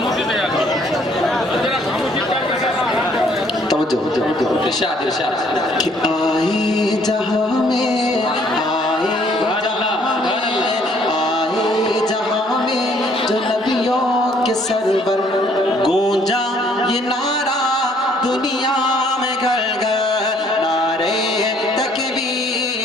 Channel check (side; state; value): both; normal; correlation 0.63